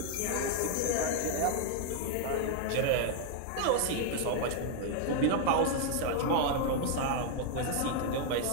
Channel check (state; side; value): different; both; correlation 0.00